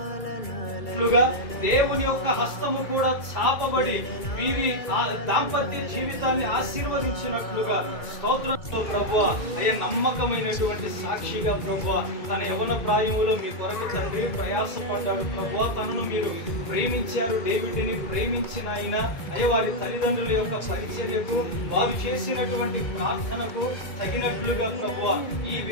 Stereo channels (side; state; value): right; late; 2.3 ms